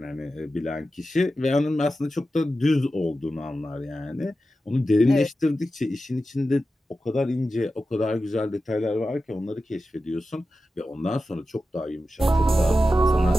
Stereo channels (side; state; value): both; normal; correlation 0.92